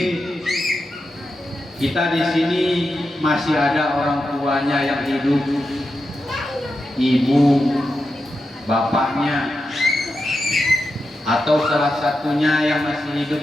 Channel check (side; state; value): both; normal; correlation 0.89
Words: kita di sini masih ada orang tuanya yang hidup, ibu, bapaknya, atau salah satunya yang masih